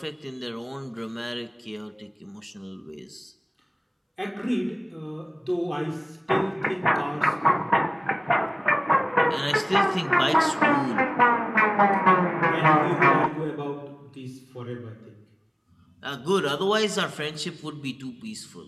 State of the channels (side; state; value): both; identical; correlation 1.00